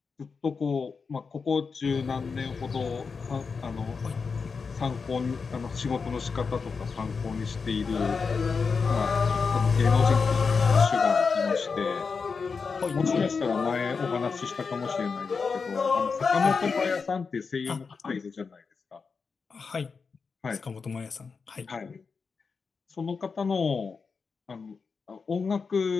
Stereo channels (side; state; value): right; quieter; 5.1 dB